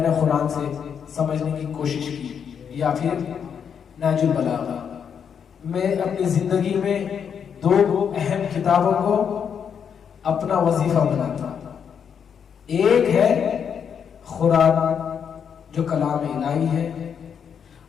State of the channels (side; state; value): right; quieter; 7.5 dB